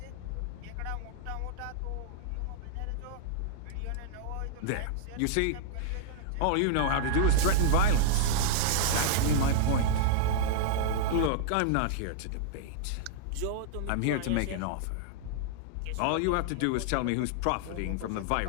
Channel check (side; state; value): both; different; correlation -0.01